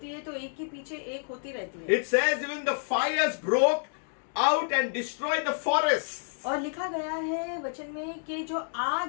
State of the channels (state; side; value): silent; right; digital silence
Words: है तो एक के पीछे एक होती रहती है। It says even the fires broke out and destroyed the forests. और लिखा गया है वचन में कि जो आग